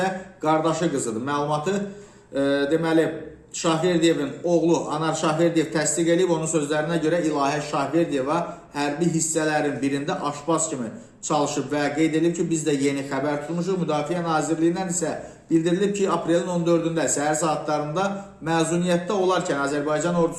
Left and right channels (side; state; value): both; identical; correlation 1.00